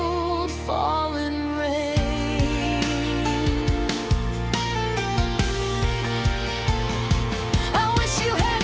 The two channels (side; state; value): both; identical; correlation 1.00